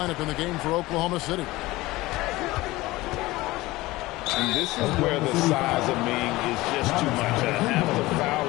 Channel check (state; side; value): quieter; right; 19.3 dB